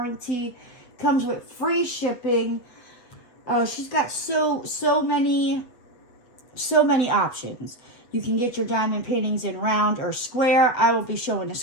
Comes with free shipping. Oh, she's got so many options. You can get your diamond paintings in round or square. I will be showing a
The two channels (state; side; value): late; right; 8.1 ms